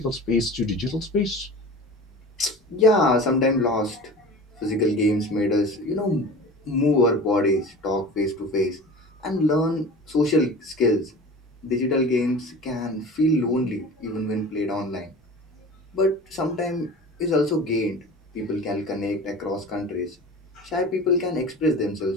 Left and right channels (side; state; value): both; normal; correlation 0.37